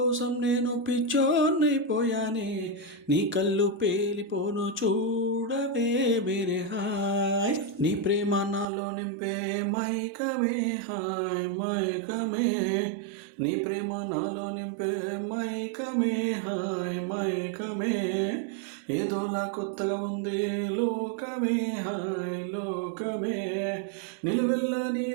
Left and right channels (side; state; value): left; drops out; at 8.7 s